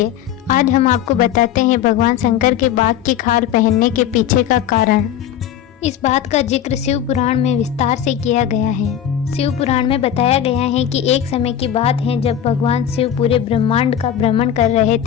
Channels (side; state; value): right; quieter; 10.0 dB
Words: आज हम आपको बताते हैं भगवान शंकर के बाघ की खाल पहनने के पीछे का कारण। इस बात का जिक्र शिव पुराण में विस्तार से किया गया है। शिव पुराण में बताया गया है कि एक समय की बात है जब भगवान शिव पूरे ब्रह्मांड का भ्रमण कर रहे